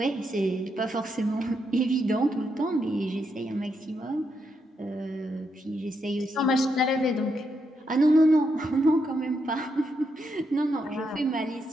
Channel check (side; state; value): both; normal; correlation 0.81